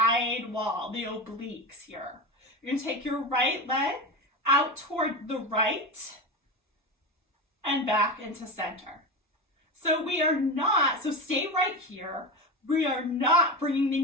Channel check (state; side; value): normal; both; correlation 0.22